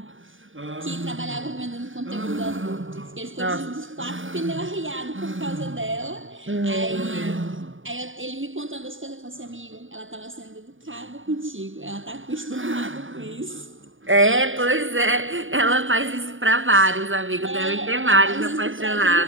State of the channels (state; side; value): late; left; 0.57 ms